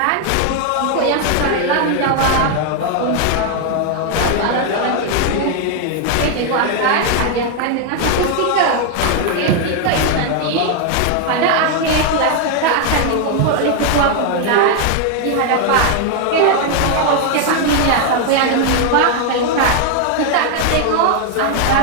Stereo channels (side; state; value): both; different; correlation 0.01